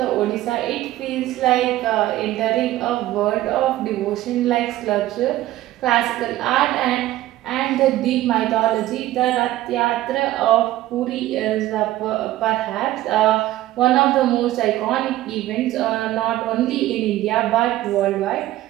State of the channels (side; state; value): left; quieter; 15.3 dB